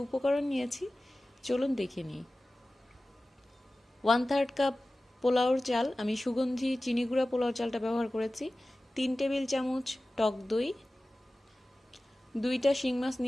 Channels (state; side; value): normal; both; correlation 0.96